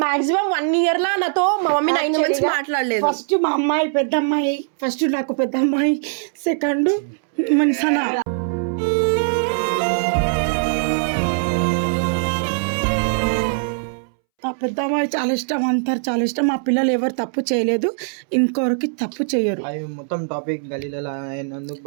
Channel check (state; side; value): silent; left; 65 dB below the other